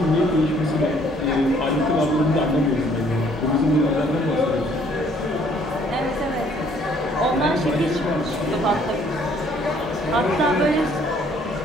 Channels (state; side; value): normal; both; correlation 0.61